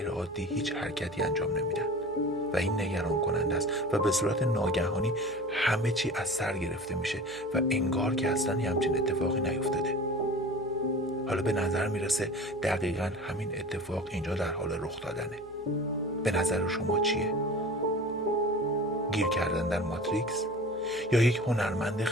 عادی هیچ حرکتی انجام نمیدن و این نگران کننده است و به صورت ناگهانی همه چی از سر گرفته میشه و انگار که اصلا همچین اتفاقی نیفتاده. حالا به نظر میرسه دقیقاً همین اتفاق اینجا در حال رخ دادنه. به نظر شما چیه؟ گیر کردن در ماتریکس؟ یا یک هنرمند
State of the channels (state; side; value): noise; right; hum, 24 dB below the sound